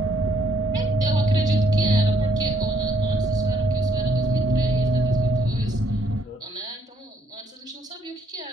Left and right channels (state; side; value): normal; both; correlation 0.69